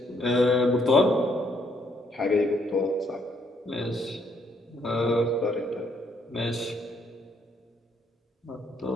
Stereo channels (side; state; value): both; normal; correlation 0.70